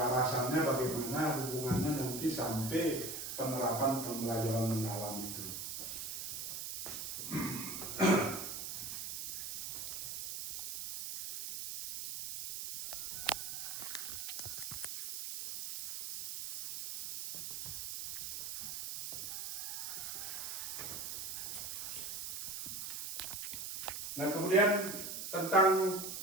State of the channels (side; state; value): right; noise; hiss, 4 dB below the sound